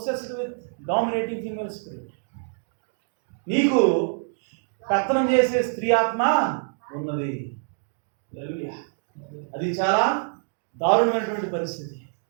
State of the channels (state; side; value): silent; left; digital silence